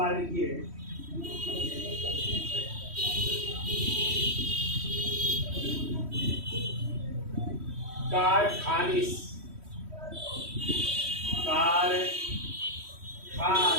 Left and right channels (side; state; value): left; late; 3.1 ms